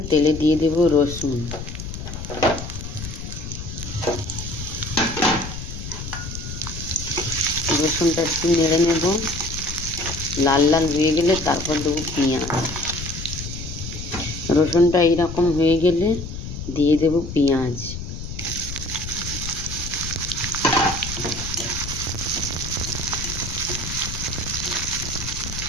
তেলে দিয়ে দেব রসুন। রসুনটা একটু নেড়ে নেব, লাল লাল হয়ে গেলে তারপর দেবো পেঁয়াজ। রসুনটা এইরকম হয়ে গেলে দিয়ে দেব পেঁয়াজ।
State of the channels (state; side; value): noise; left; rumble, 8 dB below the sound